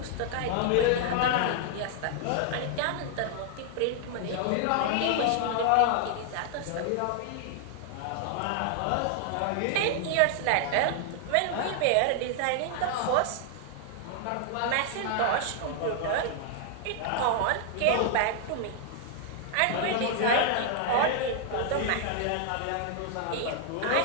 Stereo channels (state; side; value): different; both; correlation 0.00